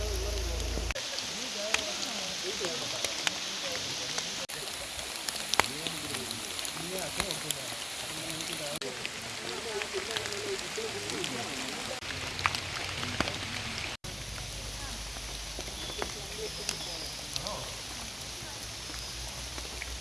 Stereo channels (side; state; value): both; identical; correlation 1.00